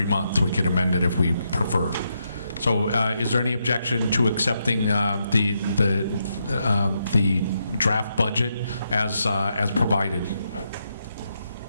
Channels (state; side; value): inverted; both; correlation -0.81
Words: month. We could amend it if we prefer. So is there any objection to accepting the draft budget as provided?